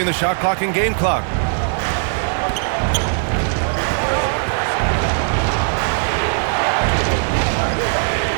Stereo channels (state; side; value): silent; left; 57 dB below the other